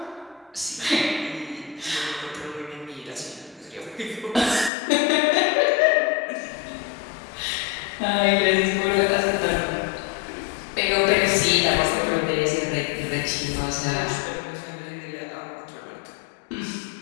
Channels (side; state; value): right; drops out; at 4.7 s